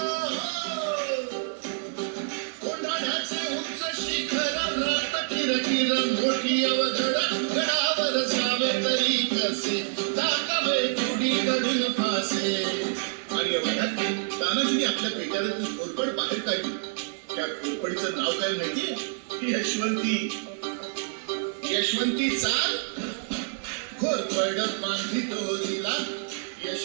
कोंढाण्याचे उंच शिखर, रात किरकिर मोठी अवघड, गडावर जावे तरी कसे, टाकावे तुडीकडून फासे. आणि एवढ्यात तानाजीने आपल्या पेटाऱ्यातून घोरपड बाहेर काढली. त्या घोरपडीचं नाव काय माहितीये? यशवंती. यशवंती चाल घोरपड बांधली तोरीला,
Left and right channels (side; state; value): left; silent; digital silence